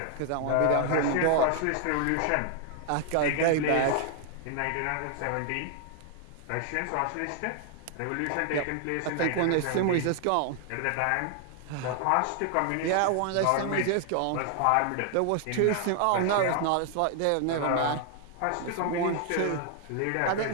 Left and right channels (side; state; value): both; different; correlation 0.00